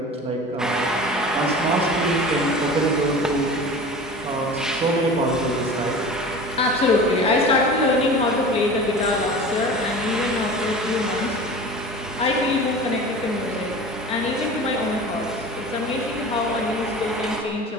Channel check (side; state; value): both; normal; correlation 0.37